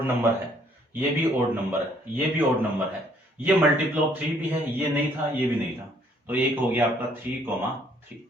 नंबर है, ये भी ओड नंबर है, ये भी ओड नंबर है, ये मल्टीपल ऑफ 3 भी है, ये नहीं था ये भी नहीं था, तो एक हो गया आपका 3 3।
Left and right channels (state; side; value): normal; both; correlation 0.64